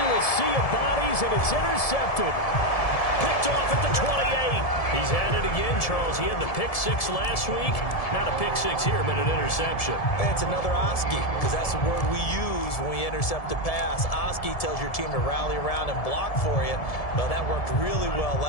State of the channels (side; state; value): right; late; 1.7 ms